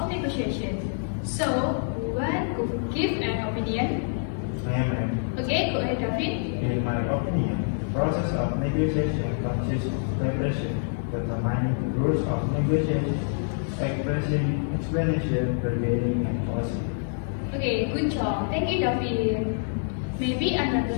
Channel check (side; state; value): right; silent; digital silence